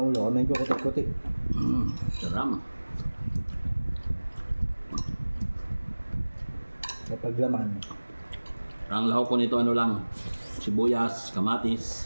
ang ulo? Medyo kutik-kutik. Saram. Kapag laman. Ang lahok ko nito ano lang, sibuyas,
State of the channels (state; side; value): inverted; both; correlation -1.00